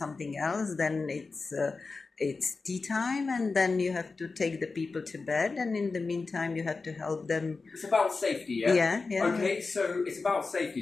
else, then it's tea time, and then you have to take the people to bed, and in the meantime you have to help them. It's about safety, yeah? Yeah, yeah. Okay, so it's about safety.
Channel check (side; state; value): right; quieter; 4.1 dB